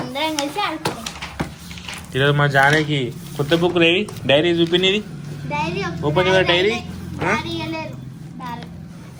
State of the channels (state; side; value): identical; both; correlation 1.00